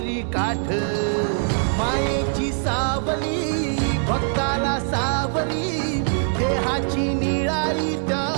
काठ मायेची सावली भक्ताला सावरी देहाची निळाई त्या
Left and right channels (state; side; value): silent; left; 62 dB below the other